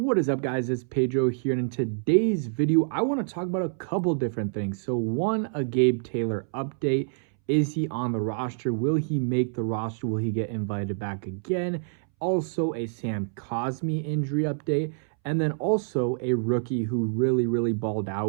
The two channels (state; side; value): silent; left; 60 dB below the other